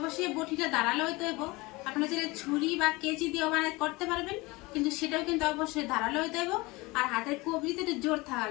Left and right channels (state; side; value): quieter; right; 23.0 dB